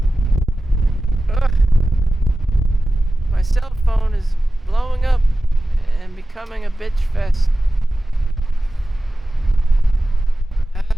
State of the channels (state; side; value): normal; both; correlation 0.94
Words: My cell phone is blowing up and becoming a bitch fest.